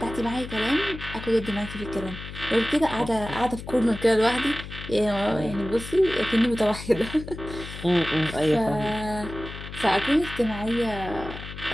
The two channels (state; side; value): noise; left; hum, 11 dB below the sound